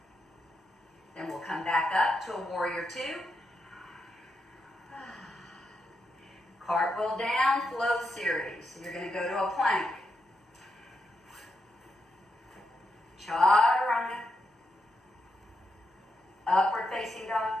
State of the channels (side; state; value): both; normal; correlation 0.84